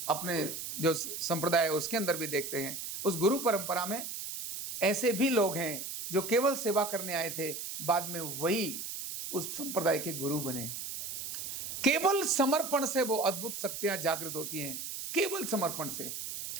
जो संप्रदाय है उसके अंदर भी देखते हैं, उस गुरु परंपरा में ऐसे भी लोग हैं जो केवल सेवा करने आए थे, बाद में वही उस संप्रदाय के गुरु बने। केवल समर्पण से वो अद्भुत शक्तियां जागृत होती हैं, केवल समर्पण से।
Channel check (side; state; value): right; noise; hiss, 6 dB below the sound